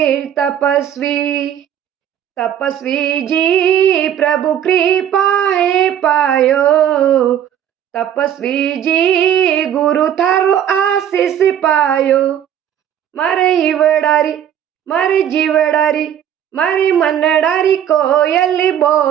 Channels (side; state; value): left; quieter; 10.0 dB